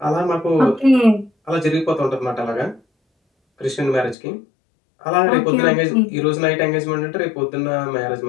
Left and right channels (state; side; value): drops out; right; at 4.2 s